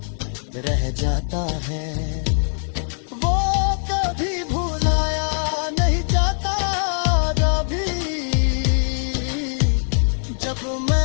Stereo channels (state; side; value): silent; right; 64 dB below the other